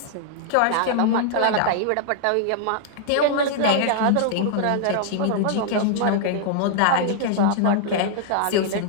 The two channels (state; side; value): different; both; correlation 0.00